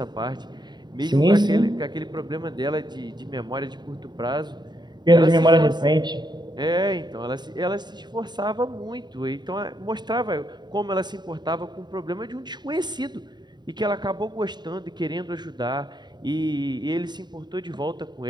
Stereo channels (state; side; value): late; left; 0.21 ms